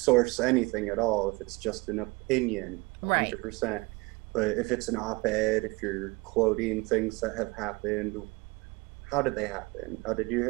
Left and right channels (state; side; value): quieter; left; 25.4 dB